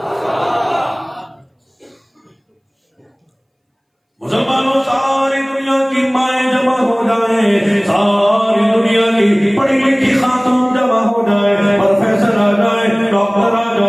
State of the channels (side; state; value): both; identical; correlation 1.00